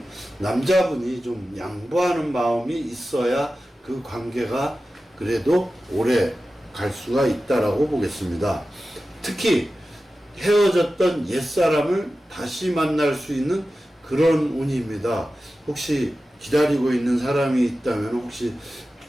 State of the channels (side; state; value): both; normal; correlation 0.94